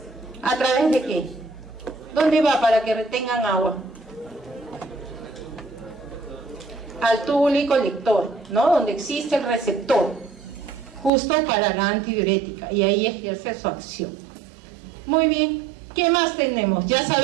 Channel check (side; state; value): left; drops out; at 11.1 s